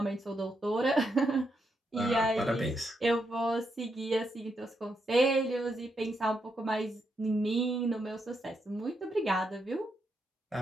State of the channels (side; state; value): both; normal; correlation 0.81